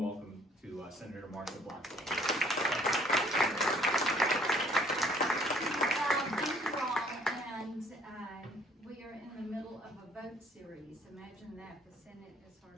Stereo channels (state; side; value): normal; both; correlation 0.59